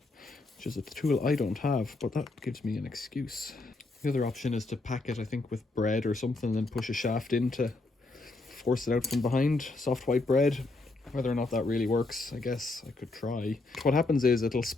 which is a tool I don't have, but that gives me an excuse. The other option is to pack it, I think, with bread or something, and then push a shaft in to force it out from behind, soft white bread. Whether or not that really works, I guess I could try. What happens is it'll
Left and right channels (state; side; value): quieter; right; 3.2 dB